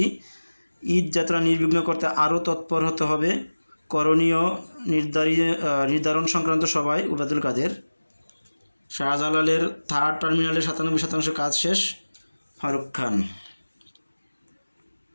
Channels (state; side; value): inverted; both; correlation -1.00